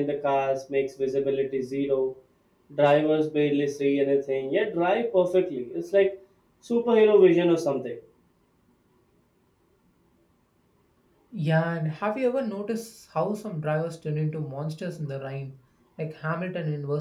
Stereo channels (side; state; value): both; identical; correlation 1.00